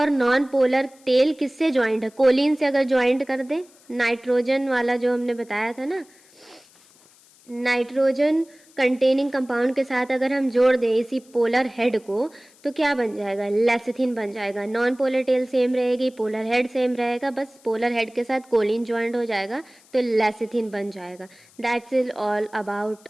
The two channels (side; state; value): left; noise; hiss, 28 dB below the sound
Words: नॉन पोलर टेल किससे ज्वाइंट है, कोलिन से अगर ज्वाइंट कर दें, नाइट्रोजन वाला जो हमने बताया था ना, नाइट्रोजन कंटेनिंग कंपाउंड के साथ अगर हम जोड़ दें इसी पोलर हेड को तो क्या बन जाएगा, लेसिथिन बन जाएगा। नॉन पोलर टेल सेम रहेगी, पोलर हेड सेम रहेगा, बस पोलर हेड के साथ कोलिन ज्वाइंट हो जाएगा तो लेसिथिन बन जाएगा। That's is all about